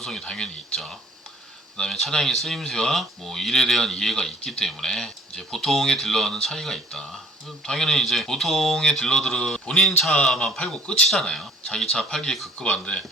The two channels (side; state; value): both; normal; correlation 0.53